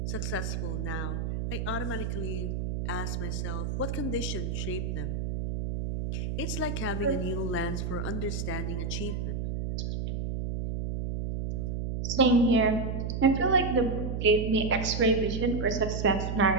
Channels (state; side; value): noise; right; hum, 2 dB below the sound